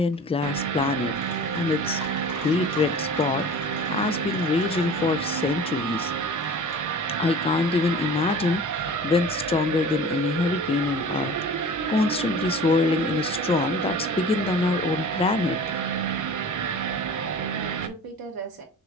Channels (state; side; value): normal; both; correlation 0.40